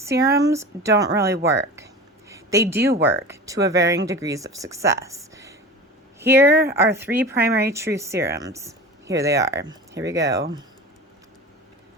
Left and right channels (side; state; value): both; normal; correlation 0.33